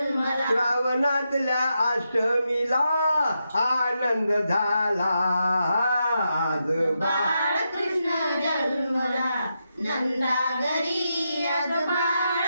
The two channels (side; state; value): both; inverted; correlation -0.85